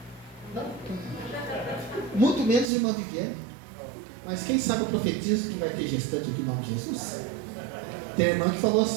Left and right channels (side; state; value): left; drops out; at 2.7 s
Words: Não. Muito menos irmã Viviane. Mas quem sabe eu profetizo que vai ter gestante aqui em nome de Jesus? Tem irmã que falou